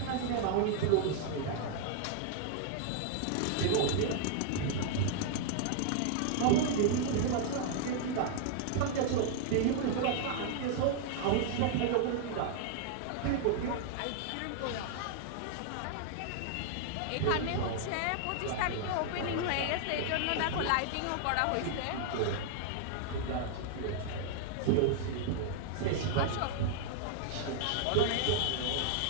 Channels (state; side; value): different; both; correlation 0.00